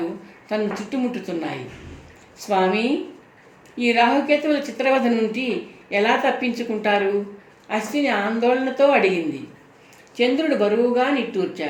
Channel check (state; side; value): identical; both; correlation 1.00